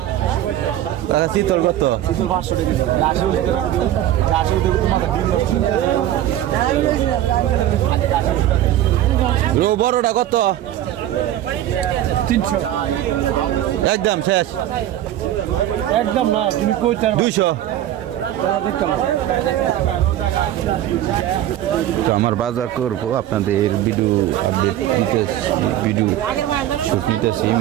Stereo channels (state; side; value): quieter; left; 12.5 dB